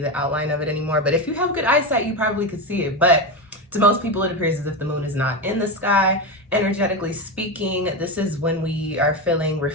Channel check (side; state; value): both; normal; correlation 0.16